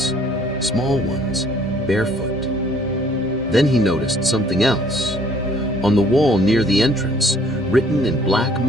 small ones, barefoot. Then he noticed something else. On the wall near the entrance, written in black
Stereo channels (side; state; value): both; normal; correlation 0.59